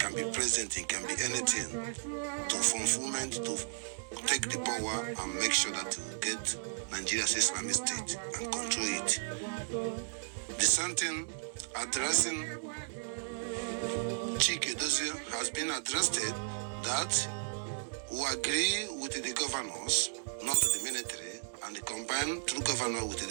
be president, it can be anything, to fulfillment, to take the power and make sure that we get Nigeria's Islamic State and control it. The same thing addressing Chike Dozie has been addressed that we agree with the governors, not the military, and the combined through governor with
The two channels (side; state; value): left; silent; digital silence